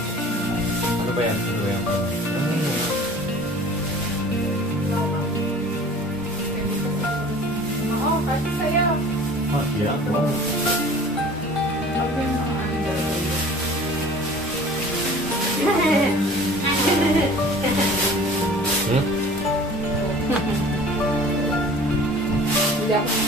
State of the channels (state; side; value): normal; both; correlation 0.45